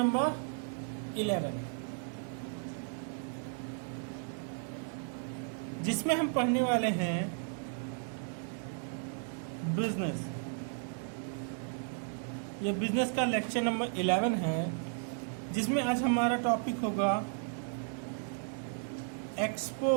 जिसमें हम पढ़ने वाले हैं बिजनेस। ये बिजनेस का लेक्चर नंबर 11 है, जिसमें आज हमारा टॉपिक होगा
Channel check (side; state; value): left; silent; 55 dB below the other